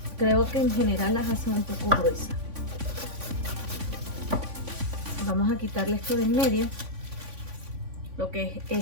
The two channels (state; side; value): late; left; 3.5 ms